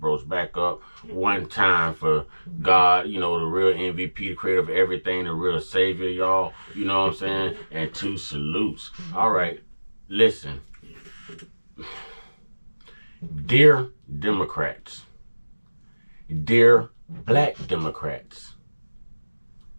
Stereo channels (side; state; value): both; inverted; correlation -1.00